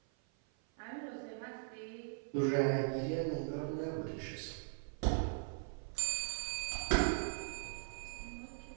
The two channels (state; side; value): silent; left; 51 dB below the other